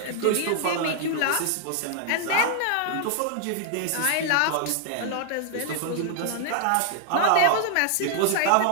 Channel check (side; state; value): both; different; correlation 0.00